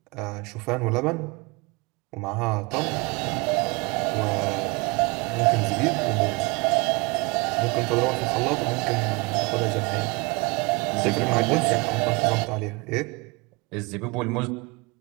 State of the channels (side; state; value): left; quieter; 27.1 dB